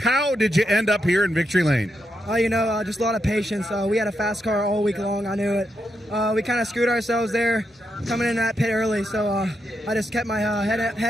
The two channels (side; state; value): both; normal; correlation 0.83